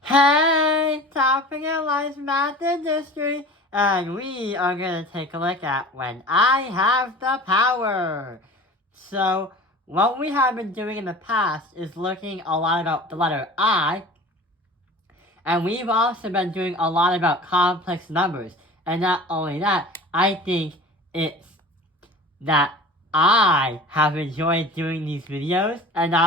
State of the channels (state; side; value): normal; both; correlation 0.39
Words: Hey, Topic in Life Math and History, and we are going to take a look at when I have the power. So, what we have been doing in the past is looking a lot about the letter I, and we've also been doing a lot about complex numbers. And not only that, I think it's that I have enjoyed doing these videos, and